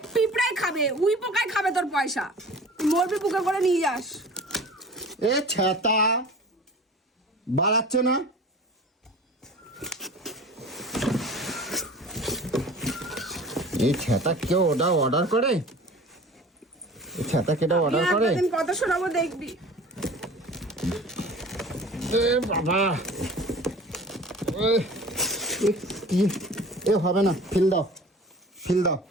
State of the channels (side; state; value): both; normal; correlation 0.42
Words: পিঁপড়াই খাবে, উই পোকায় খাবে তোর পয়সা। তুই মরবি বুকে করে নিয়ে যাস। এ ছেতা, বাড়াচ্ছে না? এই ছেতা কেউ ওটা অর্ডার করে? এই ছেতা কেটা অর্ডার করে? একদিন কত শোনাবো দেখবি। এ বাবা, কি এ হবে না, ফিল দাও, ফিল দাও।